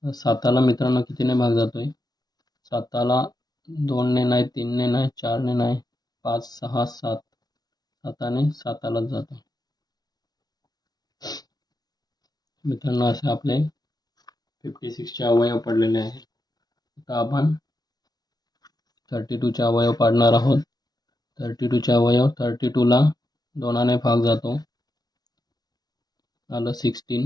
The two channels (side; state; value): right; late; 0.19 ms